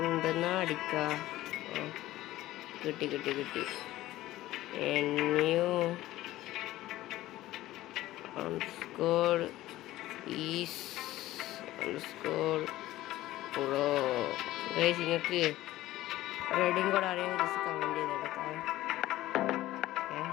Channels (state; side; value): quieter; right; 15.8 dB